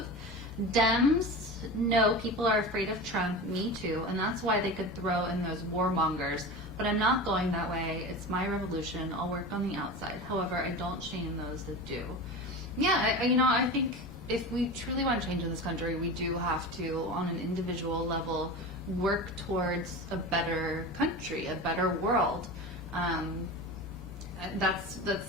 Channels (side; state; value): both; normal; correlation 0.29